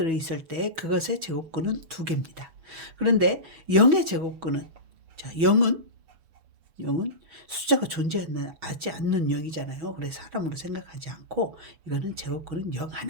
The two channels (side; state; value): left; late; 6.2 ms